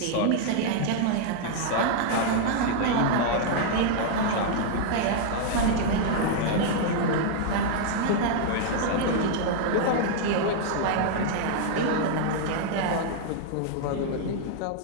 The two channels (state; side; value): different; both; correlation -0.01